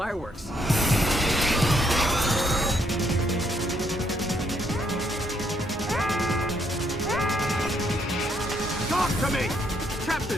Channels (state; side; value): normal; both; correlation 0.72